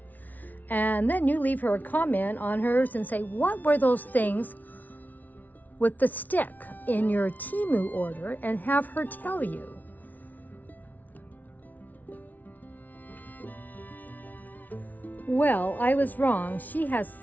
And then you leave her a comment on hers and say, what were those things with the stick in your Temu order, and have her tell you. Well, I was wrong. She has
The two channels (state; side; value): late; right; 0.078 ms